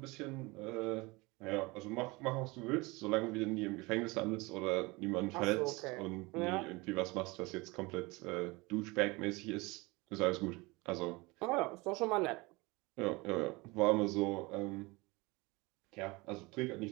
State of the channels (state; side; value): quieter; left; 24.3 dB